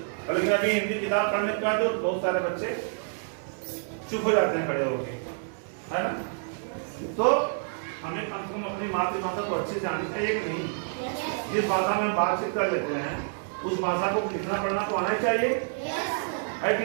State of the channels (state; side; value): silent; left; digital silence